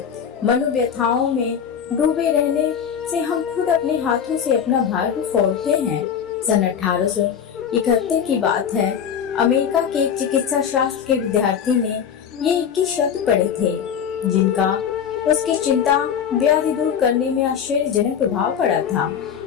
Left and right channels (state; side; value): quieter; right; 7.9 dB